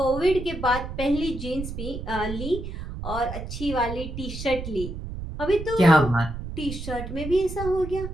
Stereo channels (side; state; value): right; noise; rumble, 8 dB below the sound